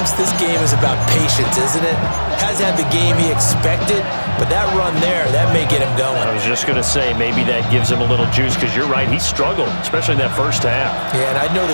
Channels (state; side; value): inverted; both; correlation -1.00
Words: this game is about patience, isn't it? Hasn't had the game he expected, but that run there, that may get him going. I was just going to say, maybe that gives him a little juice, because you're right, he struggled, especially in that 1st half. Yeah, and I know